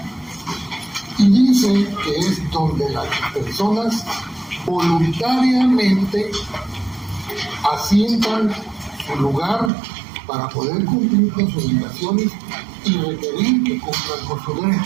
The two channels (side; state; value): left; drops out; at 9.7 s